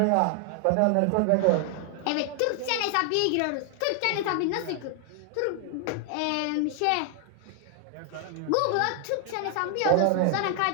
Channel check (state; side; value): different; both; correlation 0.00